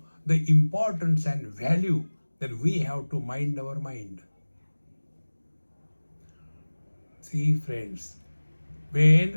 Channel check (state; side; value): inverted; both; correlation -1.00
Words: the importance and value that we have to mind our mind. See, friends,